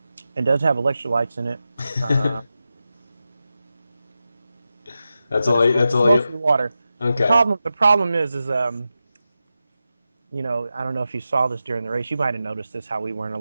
It does have electrolytes in it, uh, That's but all. That's it's all you. mostly water. The Okay. problem. The problem is I don't know if you saw this during the race. You might have noticed this, how we weren't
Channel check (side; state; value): both; inverted; correlation -0.91